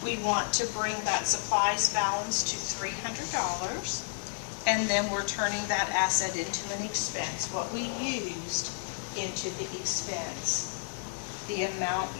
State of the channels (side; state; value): right; silent; digital silence